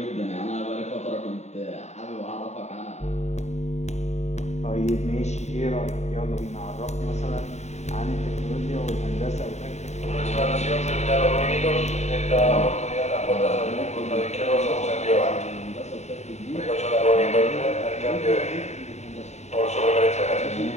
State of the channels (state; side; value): late; right; 0.32 ms